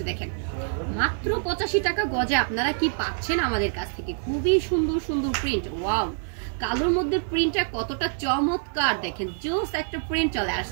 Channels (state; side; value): silent; left; digital silence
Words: দেখেন, মাত্র 85 টাকা গজে আপনারা কি পাচ্ছেন আমাদের কাছ থেকে খুবই সুন্দর সুন্দর প্রিন্ট। ওয়াও, কালোর মধ্যে প্রিন্টটা কতটা চমৎকার, দেখেন জোস একটা প্রিন্ট চলে